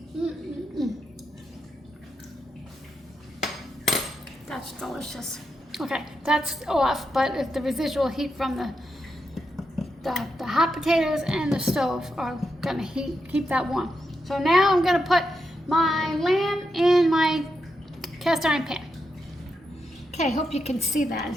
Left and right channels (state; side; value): normal; both; correlation 0.85